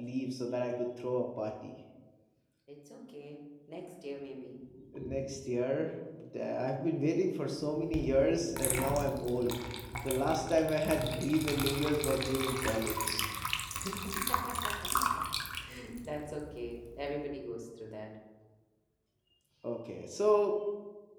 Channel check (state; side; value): identical; both; correlation 1.00